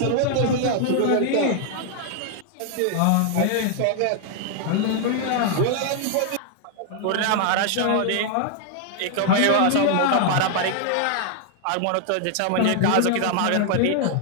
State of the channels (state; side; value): different; both; correlation 0.00